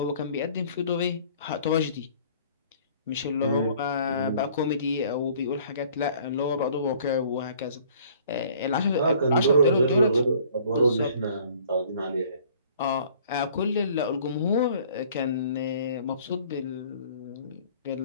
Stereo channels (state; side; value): inverted; both; correlation -0.55